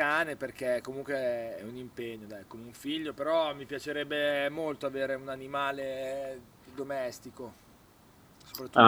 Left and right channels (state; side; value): identical; both; correlation 1.00